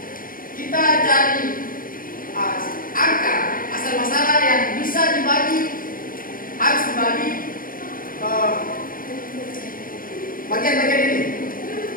kita cari angka asal masalah yang bisa dibagi, harus dibagi bagian-bagian ini.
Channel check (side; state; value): right; late; 0.41 ms